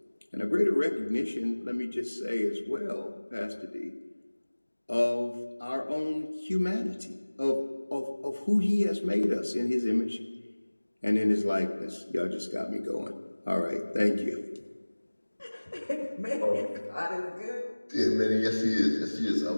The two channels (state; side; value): inverted; both; correlation -1.00